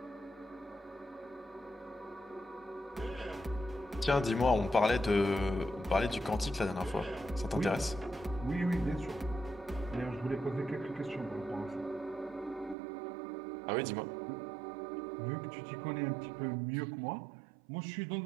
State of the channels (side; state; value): left; drops out; at 12.8 s